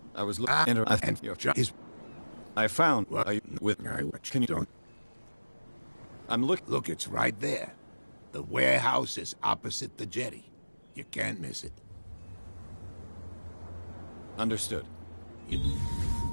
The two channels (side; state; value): both; inverted; correlation -1.00